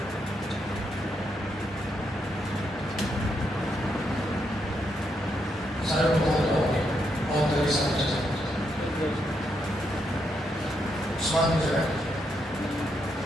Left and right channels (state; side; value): normal; both; correlation 0.79